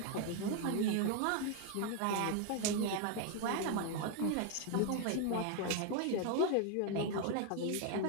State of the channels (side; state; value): both; different; correlation 0.01